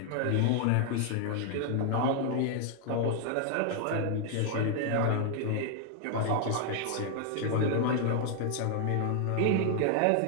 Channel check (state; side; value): different; both; correlation 0.00